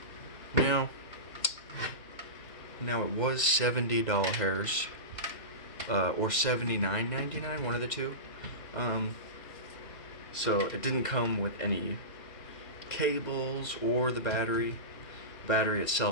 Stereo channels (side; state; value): right; late; 2.0 ms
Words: Now it was $70 or $79.99, one of the two. So it didn't come with any cables or the battery. The battery